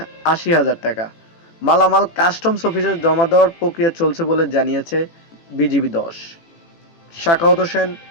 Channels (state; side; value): late; right; 18 ms